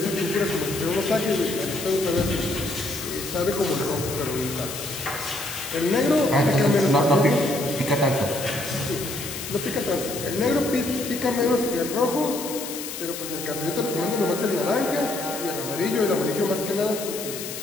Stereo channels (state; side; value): noise; left; hiss, 8 dB below the sound